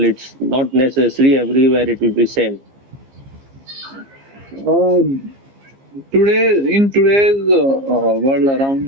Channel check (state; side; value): late; left; 15 ms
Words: It's not necessary everywhere. It will be same. uh, today in today's world